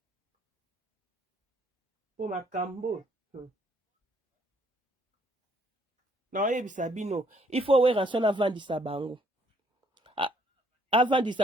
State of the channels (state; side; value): normal; both; correlation 0.67